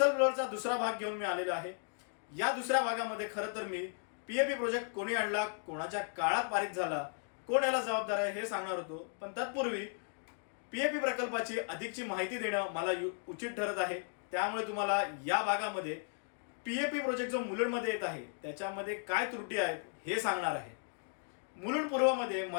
ब्लोअरचा दुसरा भाग घेऊन मी आलेला आहे. या दुसऱ्या भागामध्ये खरं तर मी पीएपी प्रोजेक्ट कोणी आणला, कोणाच्या काळात पारित झाला, कोण याला जबाबदार आहे हे सांगणार होतो. पण तत्पूर्वी पीएपी प्रकल्पाची अधिकची माहिती देणं मला उचित ठरत आहे. त्यामुळे तुम्हाला या भागामध्ये पीएपी प्रोजेक्ट जो मुलुंडमध्ये येत आहे त्याच्यामध्ये काय त्रुटी आहेत हे सांगणार आहे. मुलुंड पूर्वमध्ये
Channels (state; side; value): silent; right; 54 dB below the other